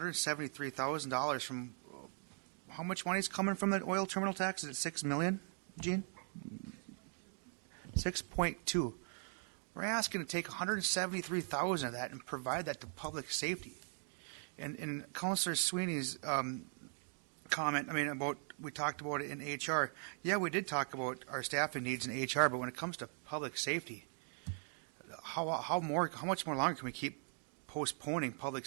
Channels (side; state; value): left; silent; 51 dB below the other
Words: from how much money is coming from the oil terminal tax? Is it $6 million, Gene? 6.2. We're asking to take $173,000 of that and provide that to public safety. And Councilor Sweeney's comment, we talked about it in HR. Yeah, we did talk about our staffing needs in HR, but when it comes to public safety, how much more longer can we keep postponing public